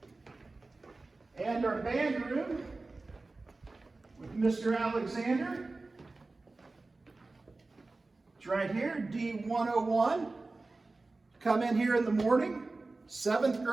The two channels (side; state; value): left; quieter; 3.4 dB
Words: And our band room with Mr. Alexander. It's right here, D101. Come in here in the morning. 7th